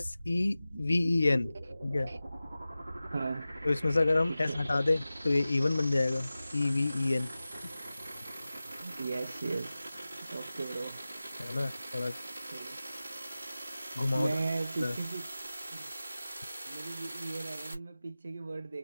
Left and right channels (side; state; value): both; inverted; correlation -0.96